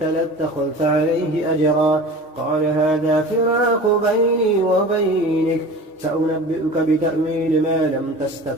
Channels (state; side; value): normal; both; correlation 0.37